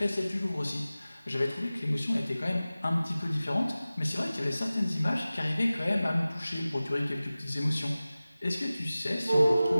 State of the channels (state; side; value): inverted; both; correlation -0.97